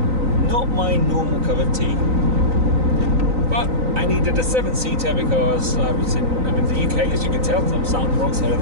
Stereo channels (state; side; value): late; left; 3.9 ms